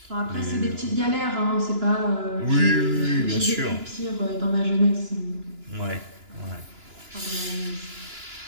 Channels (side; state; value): left; late; 2.9 ms